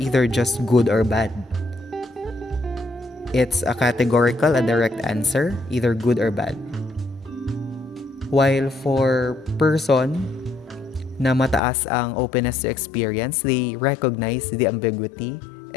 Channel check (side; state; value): right; drops out; at 11.6 s